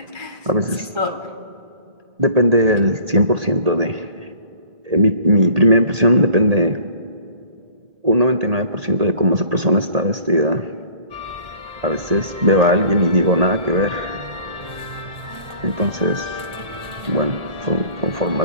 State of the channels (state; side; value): late; left; 1.8 ms